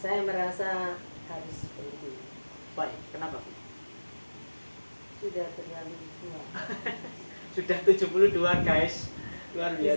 merasa harus berhenti. Baik, kenapa Bu? Sudah terlalu tua. Sudah 72 guys. Luar Di biasa.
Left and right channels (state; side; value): inverted; both; correlation -1.00